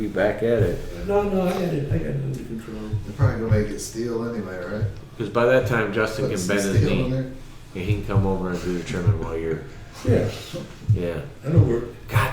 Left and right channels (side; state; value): both; identical; correlation 1.00